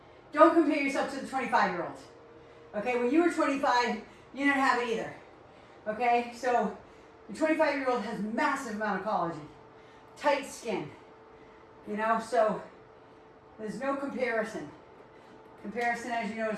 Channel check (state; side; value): identical; both; correlation 1.00